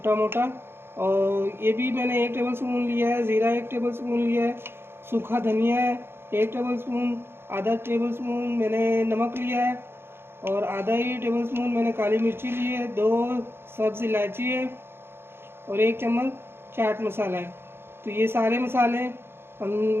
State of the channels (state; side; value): late; left; 0.11 ms